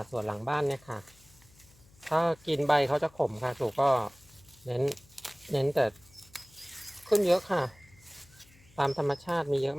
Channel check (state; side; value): noise; left; hum, 27 dB below the sound